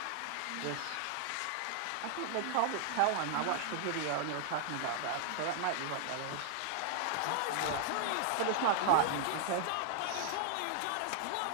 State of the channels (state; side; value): different; both; correlation -0.01